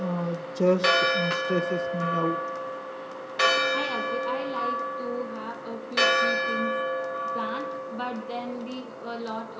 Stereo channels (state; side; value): identical; both; correlation 1.00